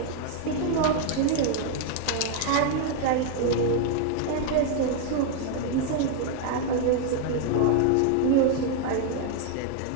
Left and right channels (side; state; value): both; different; correlation 0.00